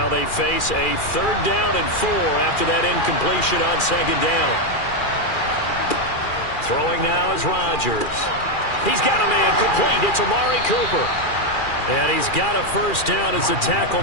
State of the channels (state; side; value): late; right; 2.4 ms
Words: they face a 3rd down and 4 after that incompletion on second down. Throwing now is Rodgers. He's got a man complete. It's Amari Cooper. And he's got a first down as the tackle